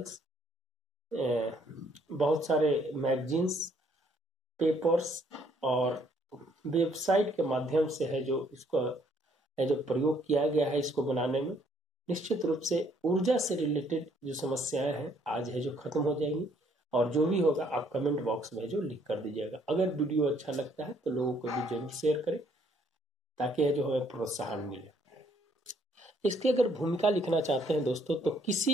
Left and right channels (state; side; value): normal; both; correlation 0.66